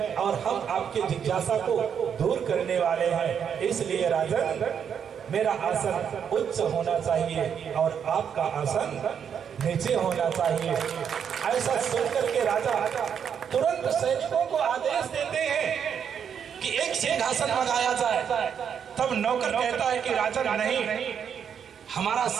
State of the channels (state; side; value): quieter; left; 7.8 dB